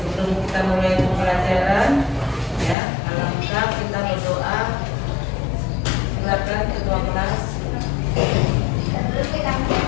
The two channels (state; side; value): drops out; right; at 2.8 s